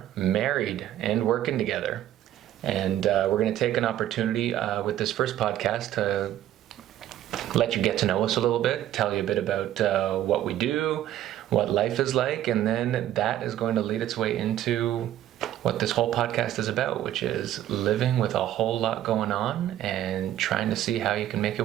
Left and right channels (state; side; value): quieter; left; 12.4 dB